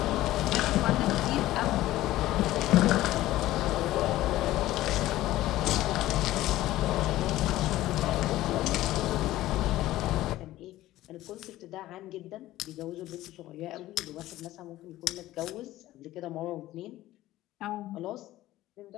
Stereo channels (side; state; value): right; quieter; 15.6 dB